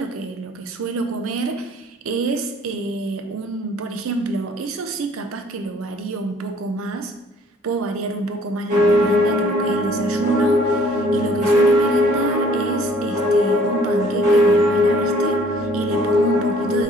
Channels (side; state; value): both; normal; correlation 0.57